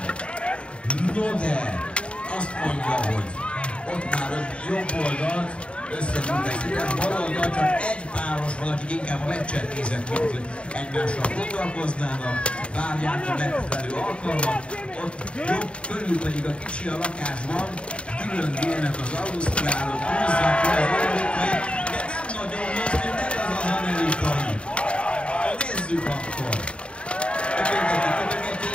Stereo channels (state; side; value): late; right; 0.058 ms